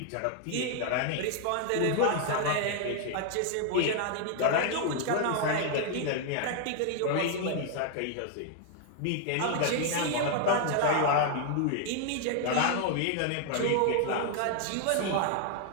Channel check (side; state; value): both; different; correlation 0.00